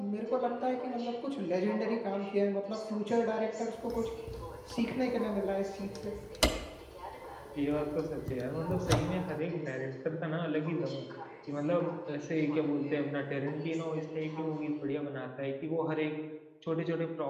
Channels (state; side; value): identical; both; correlation 1.00